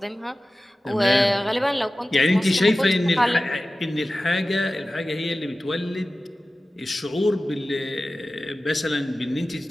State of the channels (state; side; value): normal; both; correlation 0.95